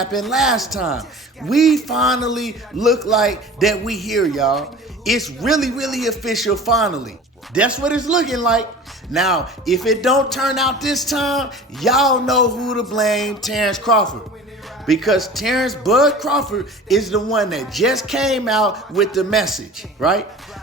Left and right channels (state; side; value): normal; both; correlation 0.40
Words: last time. We finally look like that we here, y'all. It's really official finally. That's what it's looking like. Now, if it don't turn out this time, y'all know who to blame, Terence Crawford. Because Terence Bud Crawford is the one that just came out with the message, right?